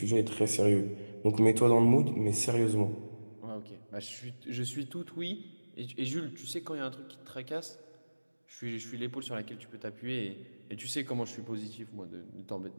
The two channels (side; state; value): both; inverted; correlation -1.00